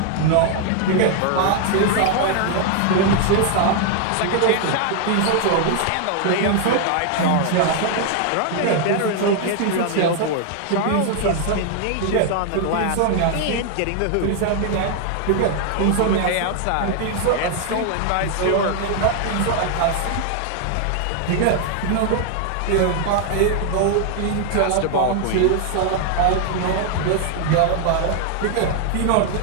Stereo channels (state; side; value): different; both; correlation 0.00